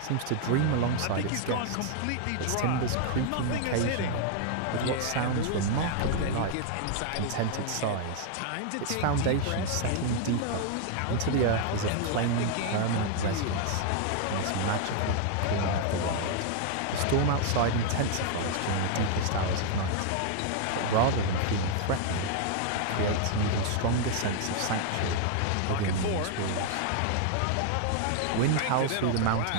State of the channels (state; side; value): different; both; correlation 0.00